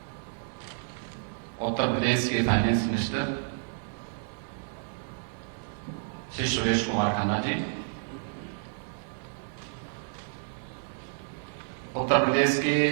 उत्तर प्रदेश के फाइनेंस मिनिस्टर श्री सुरेश कुमार खन्ना जी, उत्तर प्रदेश के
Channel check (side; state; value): left; silent; digital silence